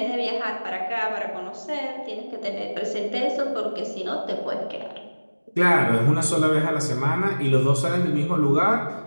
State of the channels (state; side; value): inverted; both; correlation -1.00